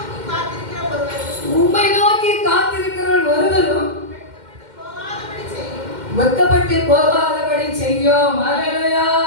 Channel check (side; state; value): left; late; 2.1 ms